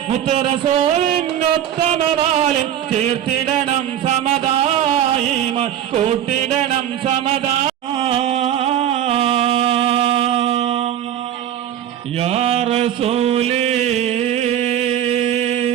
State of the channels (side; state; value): left; quieter; 10.7 dB